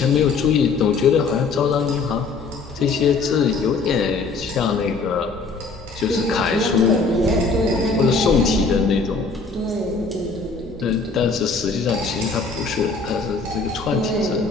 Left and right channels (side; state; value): right; quieter; 4.3 dB